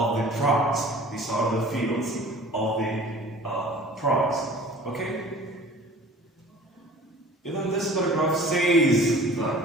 prize. These are the fields of the prize. Okay? Even this paragraph says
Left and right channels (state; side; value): normal; both; correlation 0.45